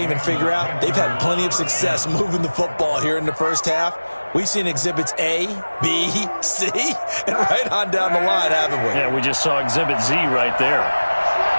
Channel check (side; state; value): both; inverted; correlation -1.00